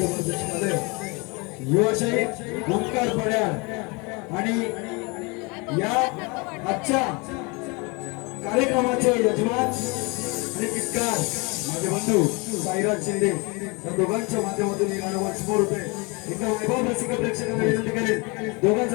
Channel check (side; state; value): right; quieter; 28.9 dB